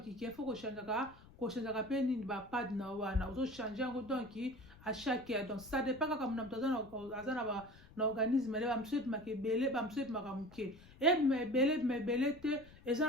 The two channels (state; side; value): noise; left; rumble, 22 dB below the sound